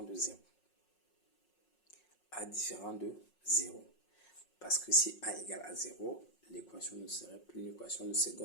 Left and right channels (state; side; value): late; right; 5.5 ms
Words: de 0. A différent de 0. Parce que si a égale à 0, l'équation ne serait plus une équation de